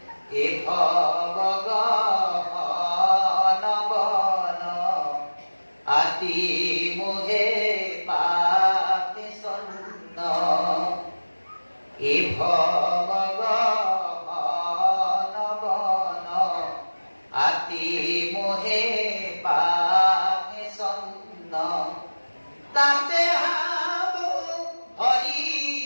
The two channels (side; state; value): both; inverted; correlation -1.00